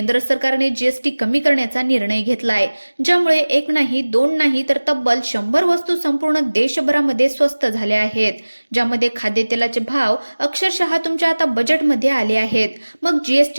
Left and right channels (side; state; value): both; inverted; correlation -1.00